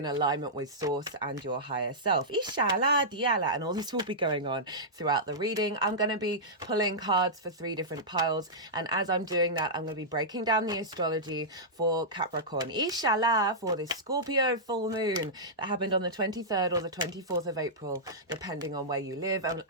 alignment with source and your higher self. And all this will be going on throughout the reading. I'm going to be pulling cards for 3 different piles, and as I'm doing that, I'm going to be breaking down the astrology for Capricorn. For this Scorpio full moon that happened on the 23rd or the 24th of April, depending on where you live. And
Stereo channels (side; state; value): both; normal; correlation -0.13